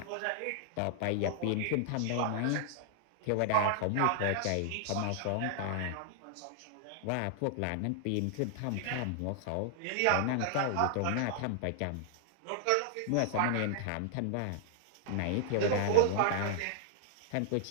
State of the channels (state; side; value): different; both; correlation 0.00